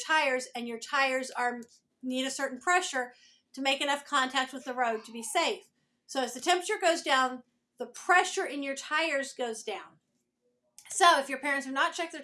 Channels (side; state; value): both; identical; correlation 1.00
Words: and your tires need a certain pressure to make enough contact with the road to be safe. So as the temperature goes down, the pressure in your tires goes down. So if your parents have not checked their